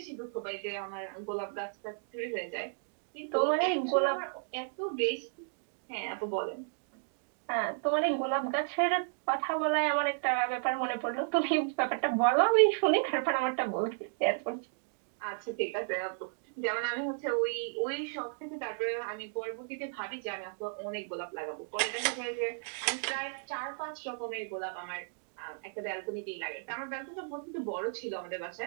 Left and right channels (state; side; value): silent; left; digital silence